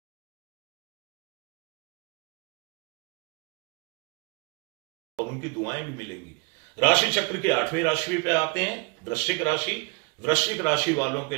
और उनकी दुआएं भी मिलेंगी। राशि चक्र की 8वीं राशि पे आते हैं, वृश्चिक राशि। वृश्चिक राशि वालों के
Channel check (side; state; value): left; quieter; 29.9 dB